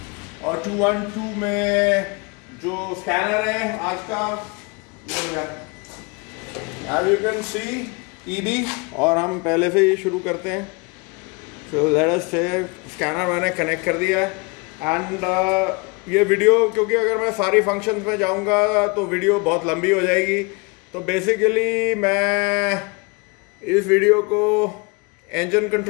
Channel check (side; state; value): right; quieter; 28.8 dB